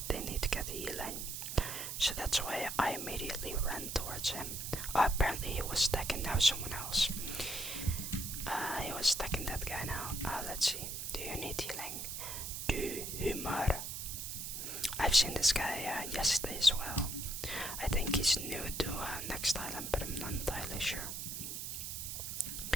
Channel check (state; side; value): noise; right; hiss, 5 dB below the sound